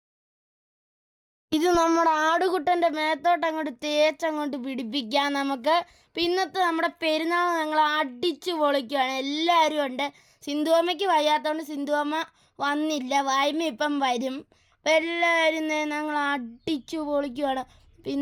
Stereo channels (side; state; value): both; identical; correlation 1.00